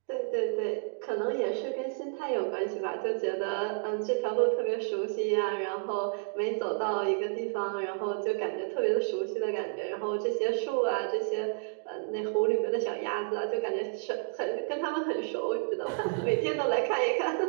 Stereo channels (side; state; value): left; silent; digital silence